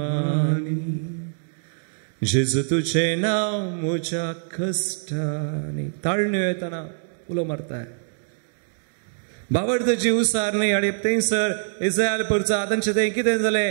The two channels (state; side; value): silent; left; digital silence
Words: जेजू तुझे नाव मोच्या कश्टानी ताळण्यो येतना उलो मारताय. भावार्थाची उसारणी आनी थंयसर इस्रायल पुरचा तांचे थंय कितें